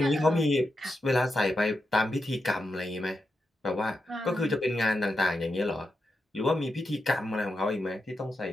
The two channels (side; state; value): both; normal; correlation 0.87